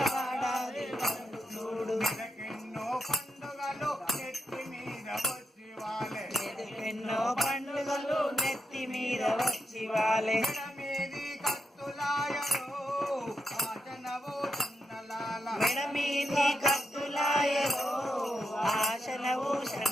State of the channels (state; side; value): normal; both; correlation 0.85